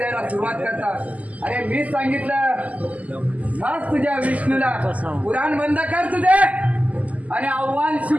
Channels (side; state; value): left; late; 0.073 ms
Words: सुरुवात करतात. अरे मीच सांगितलं हाच तुझ्या विष्णूला पुराण बंद कर तुझे आणि आव्हान